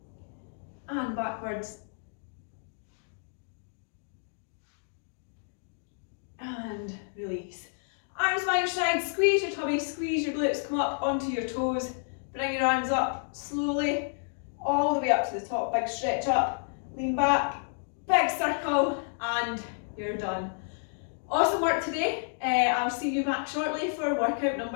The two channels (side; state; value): right; silent; digital silence